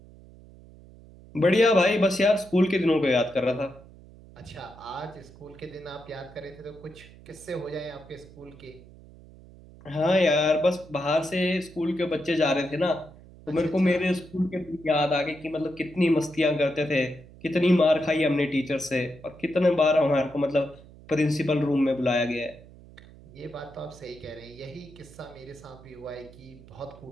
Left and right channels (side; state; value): right; noise; hum, 21 dB below the sound